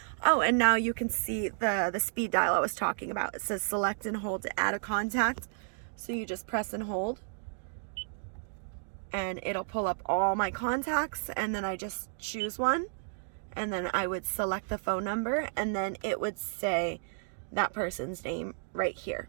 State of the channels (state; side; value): silent; left; digital silence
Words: Oh, and now you can see the speed dial I was talking about. It says select and hold to add a contact. So you just press and hold, and it'll pull up all my contacts, and then I just choose one, and then I would select the phone number, and then it would say that person's name right here.